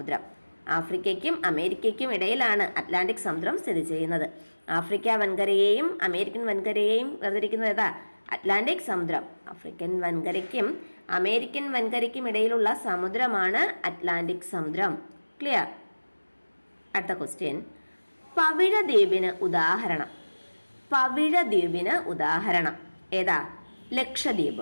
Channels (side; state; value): both; inverted; correlation -1.00